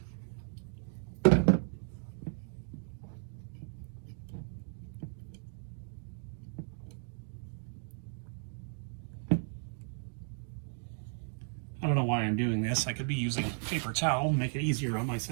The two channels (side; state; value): left; silent; digital silence